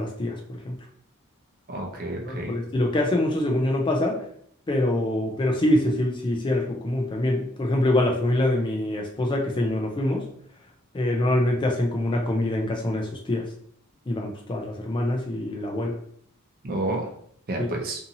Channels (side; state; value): both; normal; correlation 0.72